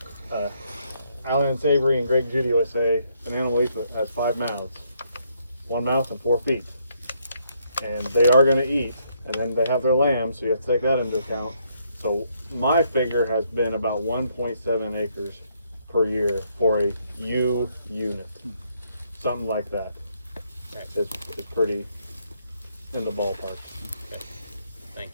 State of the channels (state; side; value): inverted; both; correlation -0.72